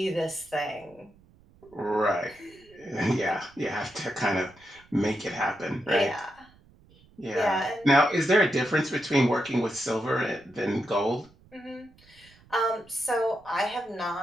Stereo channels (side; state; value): right; noise; rumble, 28 dB below the sound